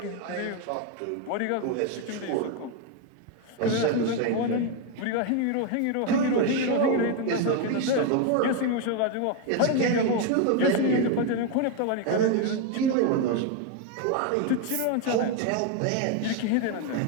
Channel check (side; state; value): both; different; correlation 0.01